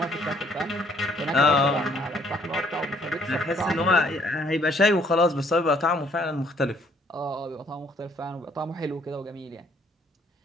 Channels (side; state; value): both; normal; correlation 0.63